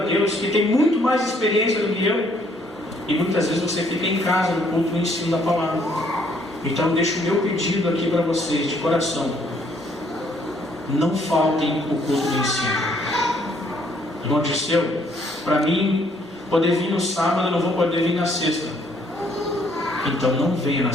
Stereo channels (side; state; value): both; normal; correlation 0.66